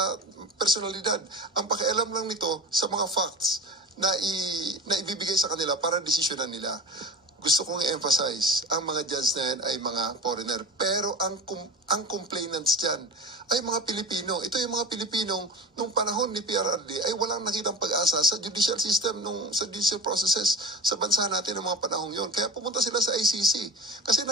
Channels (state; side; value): normal; both; correlation 0.31